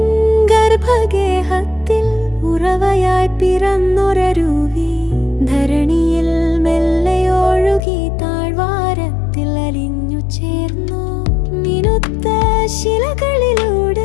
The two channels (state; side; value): drops out; right; at 7.8 s